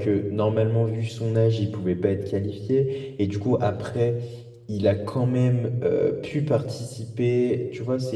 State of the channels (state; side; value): identical; both; correlation 1.00